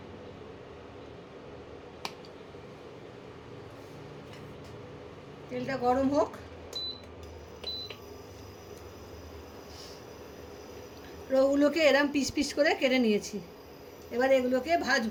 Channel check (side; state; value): both; identical; correlation 1.00